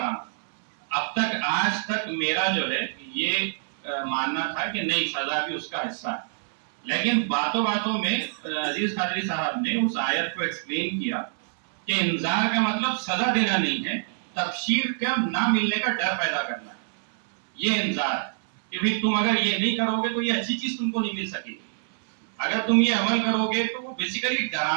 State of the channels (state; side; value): silent; left; 61 dB below the other